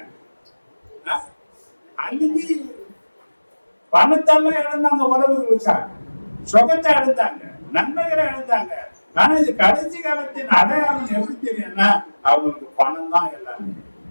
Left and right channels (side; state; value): both; inverted; correlation -1.00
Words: அன்னைக்கு பணத்தெல்லாம் இழந்தாங்க, உறவுகளுக்காக சுகத்தை இழந்தாங்க, நன்மைகளை இழந்தாங்க. ஆனா இது கடைசி காலத்தின் அடையாளம் எப்படி தெரியும்னா, அவங்களுக்கு பணம் தான் எல்லாமே.